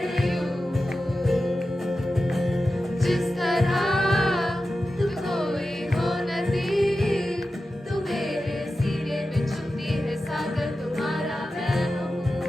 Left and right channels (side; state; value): both; normal; correlation 0.92